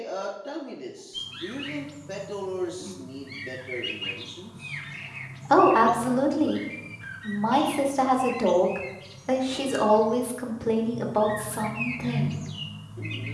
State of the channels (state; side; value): identical; both; correlation 1.00